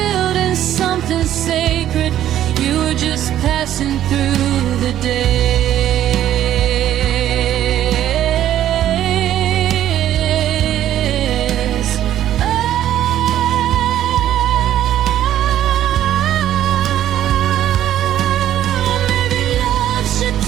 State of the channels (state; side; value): quieter; left; 11.8 dB